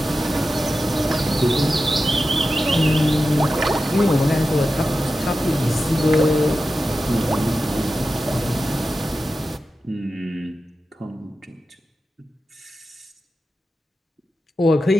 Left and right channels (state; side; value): normal; both; correlation 0.92